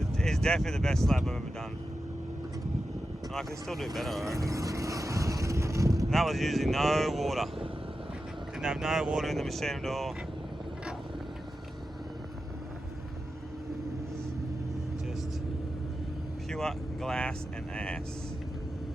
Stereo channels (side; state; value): both; normal; correlation 0.91